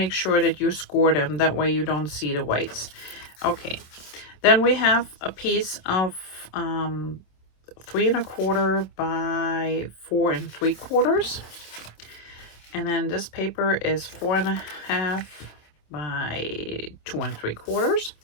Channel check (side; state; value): right; late; 27 ms